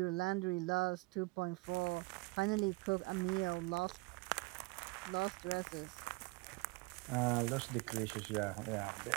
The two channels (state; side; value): quieter; left; 26.0 dB